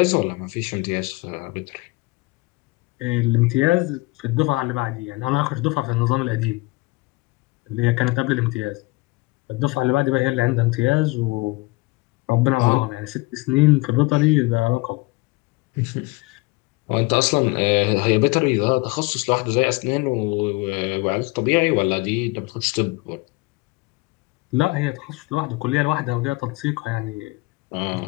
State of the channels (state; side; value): quieter; right; 24.1 dB